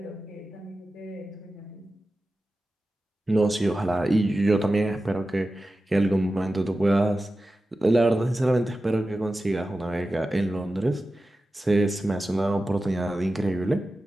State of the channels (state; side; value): normal; both; correlation 0.94